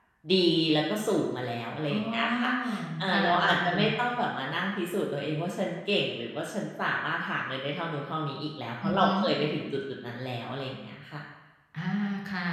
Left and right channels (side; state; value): both; identical; correlation 1.00